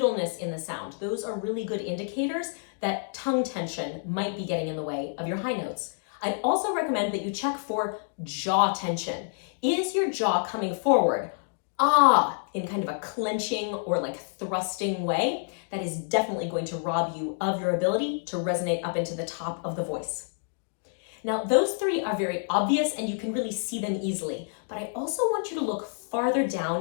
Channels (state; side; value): silent; right; digital silence